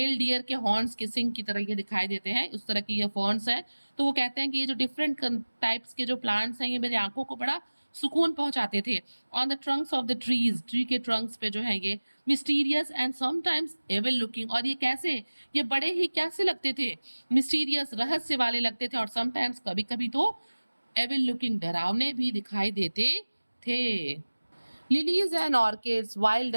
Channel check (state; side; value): inverted; both; correlation -1.00